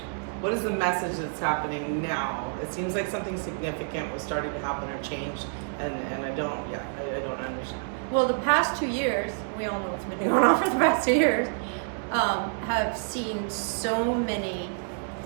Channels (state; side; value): silent; left; 59 dB below the other